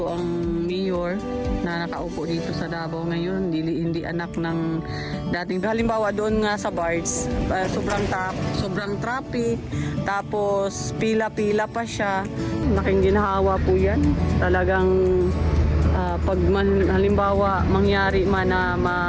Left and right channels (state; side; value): identical; both; correlation 1.00